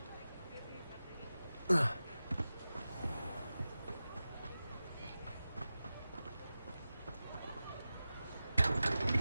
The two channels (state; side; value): inverted; both; correlation -0.95